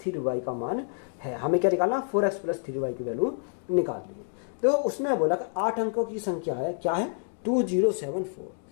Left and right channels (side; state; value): right; silent; 59 dB below the other